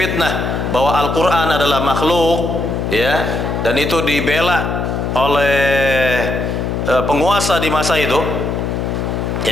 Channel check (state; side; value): noise; left; hum, 2 dB below the sound